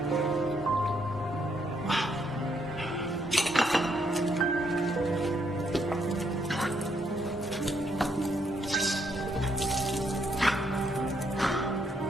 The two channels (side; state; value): both; normal; correlation 0.74